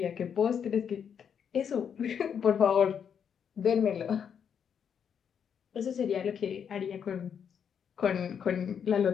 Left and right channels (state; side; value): quieter; right; 7.7 dB